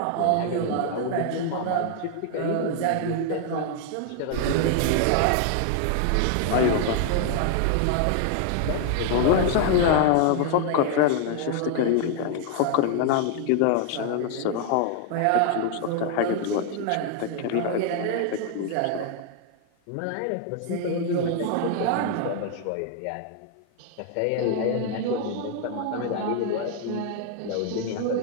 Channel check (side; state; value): both; different; correlation 0.00